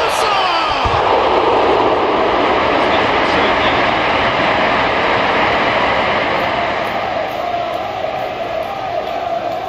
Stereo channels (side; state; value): both; identical; correlation 1.00